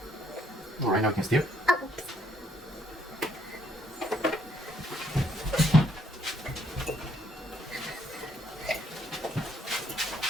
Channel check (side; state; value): both; normal; correlation 0.69